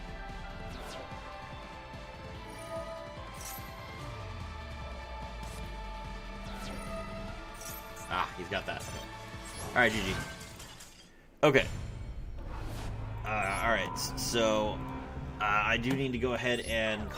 Ah, he's got that. Alright, GG. Okay. Alright, so I do need to go ahead and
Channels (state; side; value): identical; both; correlation 1.00